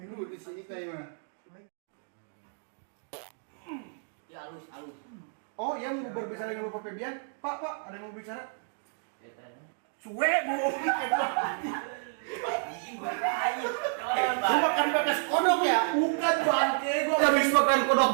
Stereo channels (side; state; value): left; silent; digital silence